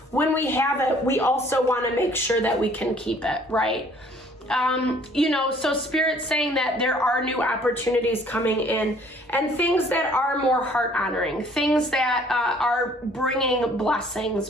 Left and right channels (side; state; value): both; normal; correlation 0.57